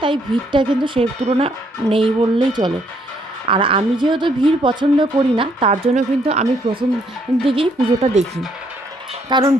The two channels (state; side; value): normal; both; correlation 0.69